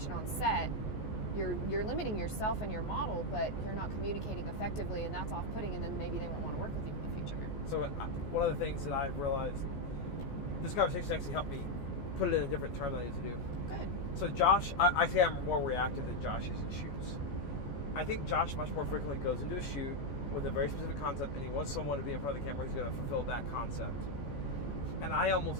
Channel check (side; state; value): right; late; 14 ms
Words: on set, you're limiting yourself and your model, but you're not communicating effectively, and that's off-putting, and then maybe they won't want to work with you in the future. So one of the things that I've realized, this conversation actually helped me put it in a different term than I need to do. Good. So Josh, I say I'm more reactive than Josh is in shoots. I think Josh much more frequently goes into a shoot with a very specific concept, and he wants someone to be in front of the camera who's going to fulfill that concept. And I